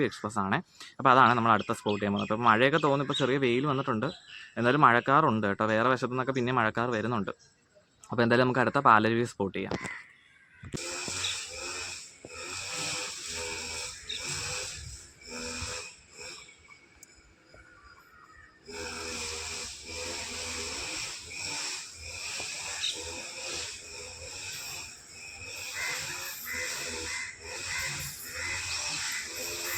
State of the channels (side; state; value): both; identical; correlation 1.00